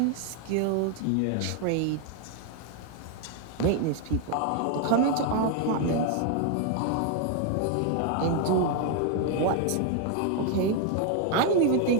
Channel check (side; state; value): both; different; correlation 0.01